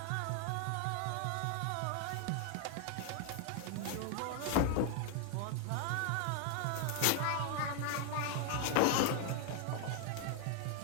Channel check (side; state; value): both; different; correlation 0.01